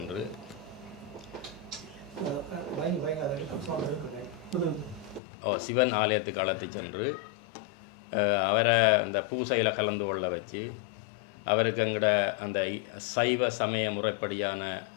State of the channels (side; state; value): right; drops out; at 5.2 s